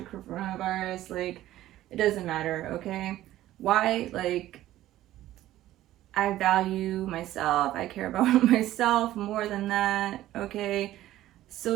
coronavirus, like, it doesn't matter, okay? Why? Like, I value myself. I care about myself more than that, okay?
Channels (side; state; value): left; quieter; 14.3 dB